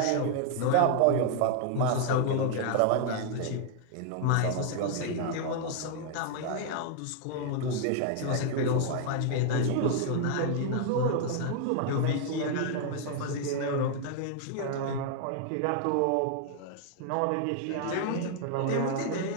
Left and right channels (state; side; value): different; both; correlation 0.00